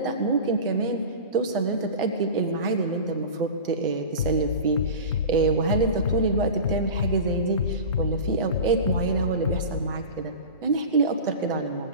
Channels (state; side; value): inverted; both; correlation -0.32